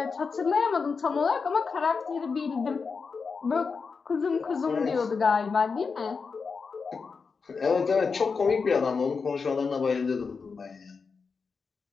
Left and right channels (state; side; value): quieter; right; 5.1 dB